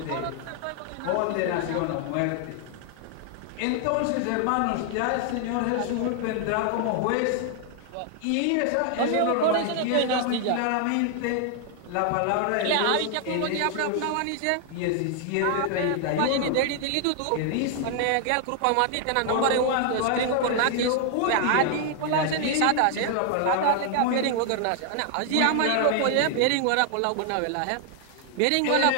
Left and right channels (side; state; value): both; different; correlation 0.00